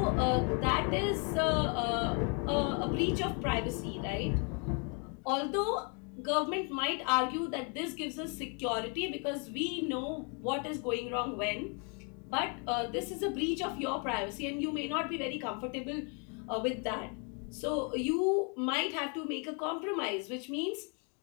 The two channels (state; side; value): quieter; right; 37.1 dB